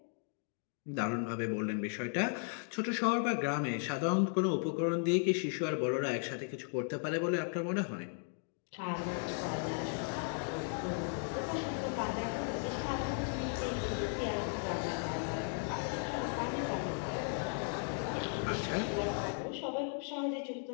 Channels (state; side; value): silent; right; 54 dB below the other